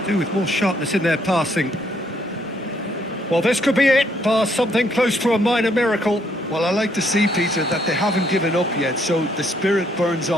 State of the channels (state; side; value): normal; both; correlation 0.70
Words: do with more sharpness in their passing. Well, this could be it, bar something close to a minor miracle. Well, I like to see, Peter, that they haven't given up yet, so the spirit burns